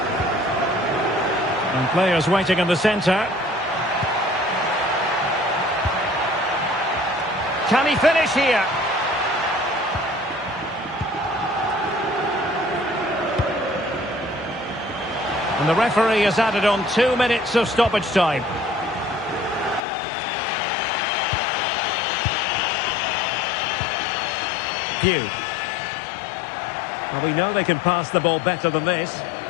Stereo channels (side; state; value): right; drops out; at 19.8 s